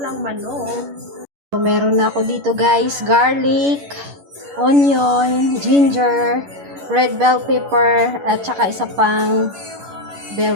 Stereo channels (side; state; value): left; late; 11 ms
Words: manok. So, meron na ako dito guys, garlic, onion, ginger, red bell pepper, at saka isa pang bell